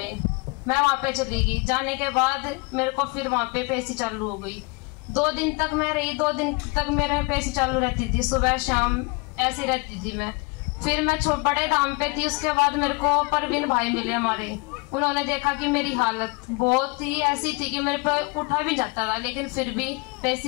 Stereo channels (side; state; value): right; quieter; 27.8 dB